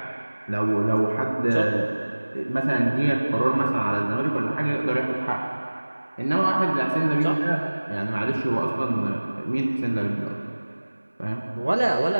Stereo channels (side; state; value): both; inverted; correlation -1.00